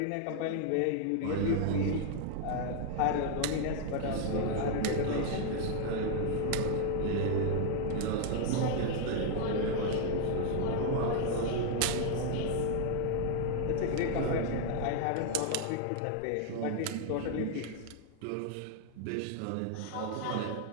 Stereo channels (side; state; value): both; different; correlation 0.00